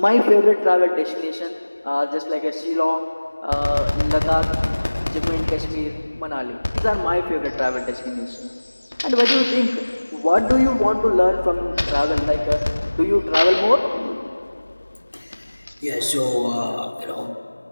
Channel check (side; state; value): both; inverted; correlation -1.00